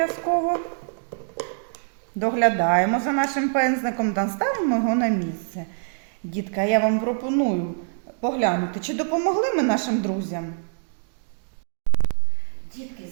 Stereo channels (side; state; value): left; silent; digital silence